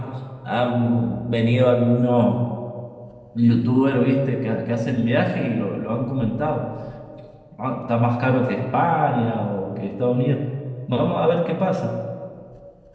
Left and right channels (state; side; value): identical; both; correlation 1.00